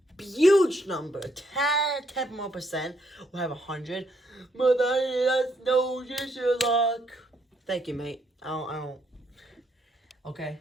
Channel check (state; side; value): normal; both; correlation 0.73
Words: huge number. 10 more percent will have 100. But that's no luck. Thank you, mate. I don't. Okay.